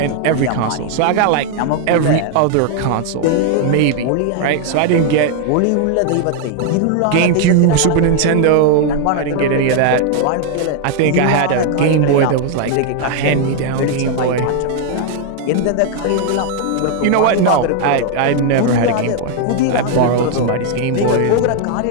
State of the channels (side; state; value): both; different; correlation 0.00